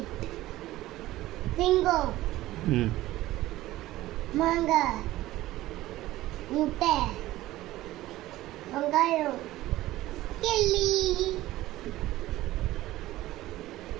சிங்கம், ம் மாங்காய், முட்டை, வெங்காயம், கிள்ளி,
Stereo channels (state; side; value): quieter; left; 16.3 dB